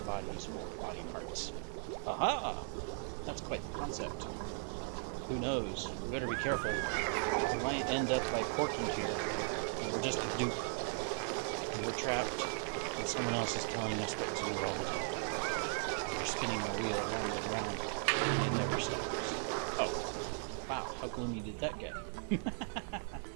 for body parts. Aha! That's quite the concept. Who knows? We better be careful. We might end up like Porky here, and we're just a dupe. And we're trapped, and someone else is telling us what to do all the time. We're spinning our wheel around and around, and it never stops. Oh, wow, how gloomy did that get?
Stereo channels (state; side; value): silent; left; 53 dB below the other